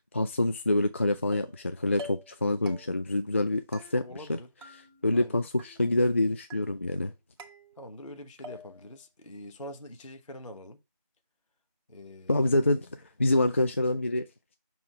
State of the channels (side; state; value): both; inverted; correlation -0.85